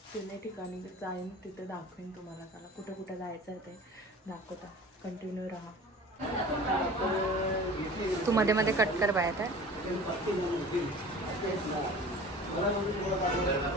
3 ठिकाणी जाईन, तिथे दाखवेन तुम्हाला. चला कुठं कुठं जायचं आहे ते दाखवता. कंटिन्यू राहा. तू मध्ये मध्ये कट कर बाय आता.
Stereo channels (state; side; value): normal; both; correlation 0.41